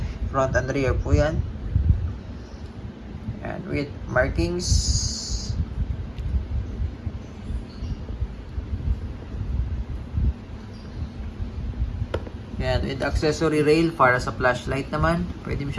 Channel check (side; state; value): both; identical; correlation 1.00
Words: front and rear po yan. And with markings, yan, with accessory rail para sa flashlight naman, pwede mo